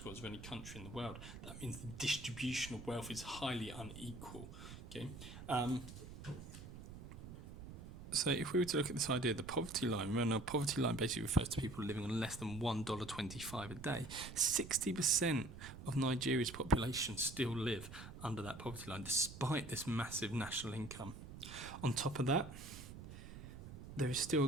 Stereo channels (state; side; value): noise; right; rumble, 12 dB below the sound